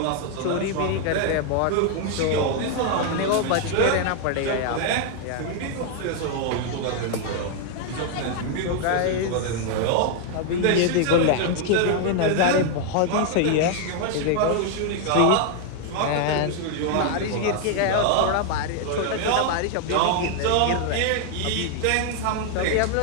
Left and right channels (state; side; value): different; both; correlation 0.00